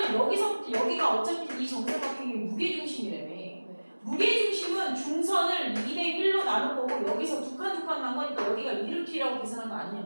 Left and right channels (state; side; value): inverted; both; correlation -1.00